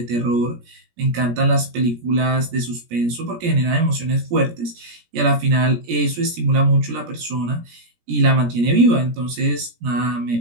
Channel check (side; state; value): left; late; 17 ms